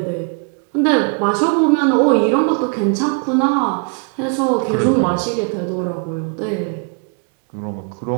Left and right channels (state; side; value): quieter; left; 39.3 dB